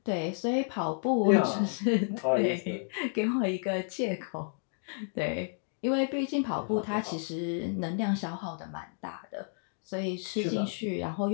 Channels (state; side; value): silent; right; digital silence